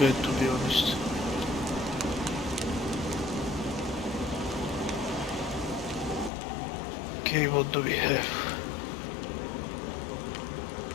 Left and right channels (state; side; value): drops out; right; at 6.3 s